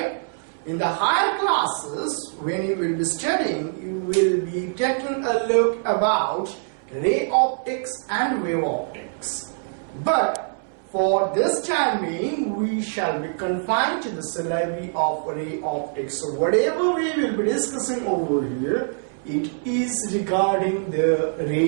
In the higher classes, when you will be studying, you will be taking a look about ray optics and wave optics. But for this time being, we shall be confined to the syllabi of ray optics. So whatever we will be discussing over here, it is regarding the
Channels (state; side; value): silent; left; 63 dB below the other